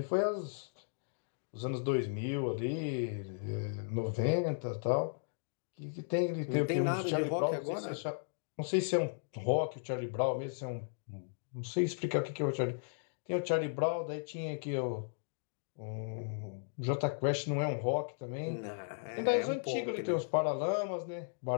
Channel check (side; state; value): right; silent; digital silence